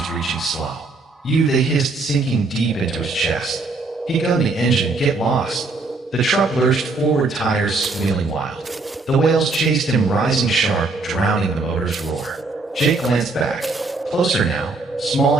reaching slow. You, they hissed, sinking deep into his chest. He gunned the engine. Get lost. The truck lurched forward, tires squealing wild. The wails chased him, rising sharp, drowning the motor's roar. Jake glanced back. Closer now, small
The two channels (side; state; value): left; quieter; 3.5 dB